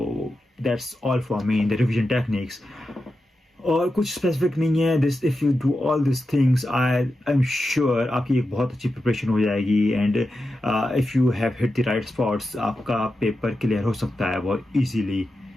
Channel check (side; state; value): both; normal; correlation 0.90